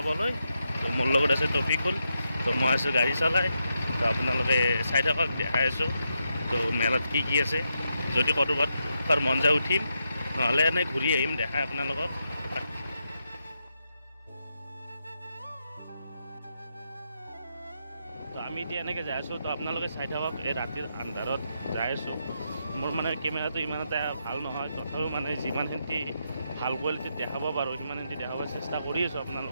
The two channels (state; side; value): inverted; both; correlation -0.83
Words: তো মোৰ লগত আছে টপিকুল। তো মই আছোঁ গাড়ী চলাই। তো আপোনালোকে চাই থাকক, দেখাই আছোঁ তো মেলাত কি কি আছে। যদি ক'ৰবাত মন যায় উঠিম, নহ'লে এনেই ঘূৰি আহিম, দেখাই আপোনালোকক। তো আমি এতিয়া এনেকৈ যাই আছোঁ। তো আপোনালোকে চাই থাকক, এই ৰাতিৰ আন্ধাৰত যাই আছোঁ। মোৰ মানে কেমেৰাটো ইমান এটা ভাল নহয়, তথাপিও মানে যিমানখিনি ভাল কোৱালিটিত দেখাব পাৰোঁ সিমানখিনি দেখাব চেষ্টা কৰি আছোঁ